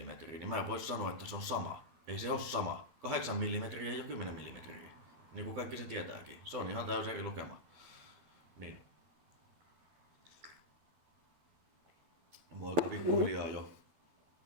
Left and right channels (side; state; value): left; late; 12 ms